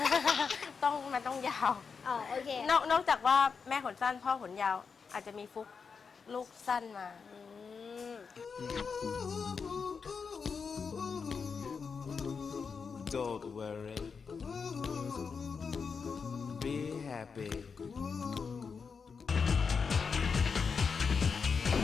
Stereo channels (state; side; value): quieter; right; 5.6 dB